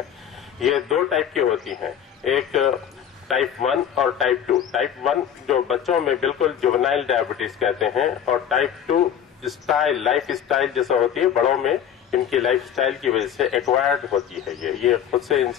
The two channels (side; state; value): right; quieter; 9.1 dB